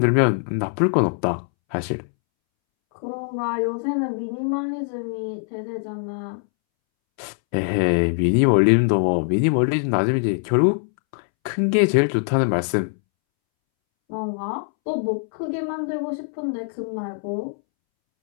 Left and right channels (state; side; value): silent; right; 64 dB below the other